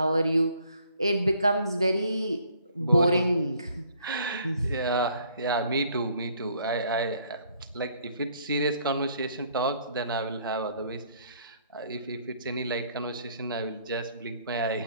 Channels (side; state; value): both; inverted; correlation -0.63